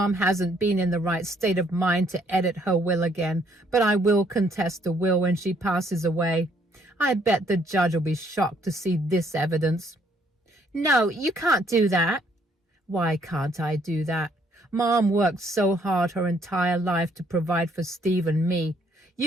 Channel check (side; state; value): both; normal; correlation 0.67